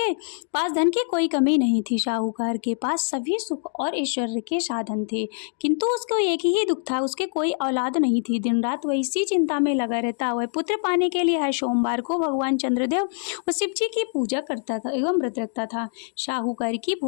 पास धन की कोई कमी नहीं थी। साहूकार के पास सभी सुख और ऐश्वर्य के साधन थे, किंतु उसको एक ही दुख था, उसके कोई औलाद नहीं थी। दिन रात वह इसी चिंता में लगा रहता। वह पुत्र पाने के लिए हर सोमवार को भगवान चंद्रदेव व शिव जी की पूजा करता था एवं व्रत रखता था। साहूकार की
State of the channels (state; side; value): silent; right; digital silence